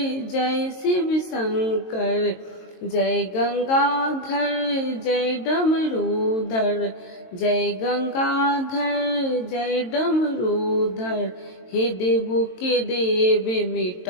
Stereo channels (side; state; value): right; late; 22 ms